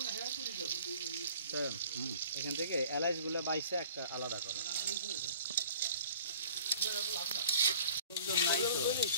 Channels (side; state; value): both; inverted; correlation -0.48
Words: তো এখান থেকে এলাচগুলো বাইসে একটা আলাদা করে